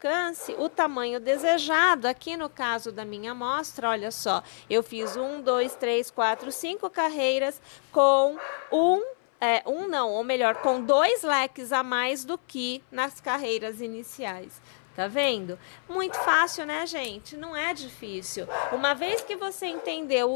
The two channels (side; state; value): right; silent; 58 dB below the other